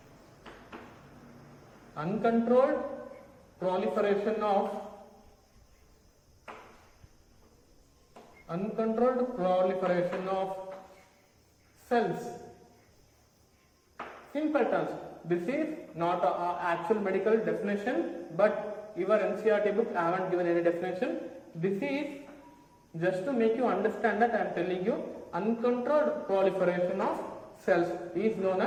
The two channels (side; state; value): both; identical; correlation 1.00